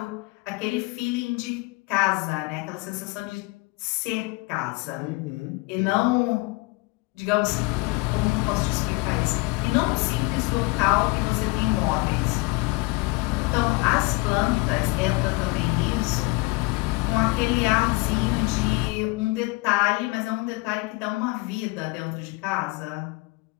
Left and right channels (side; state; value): right; quieter; 24.7 dB